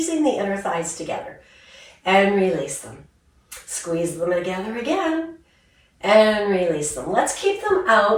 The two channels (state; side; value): identical; both; correlation 1.00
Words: the inner thighs together and release them. Squeeze them together again and release them. Let's keep them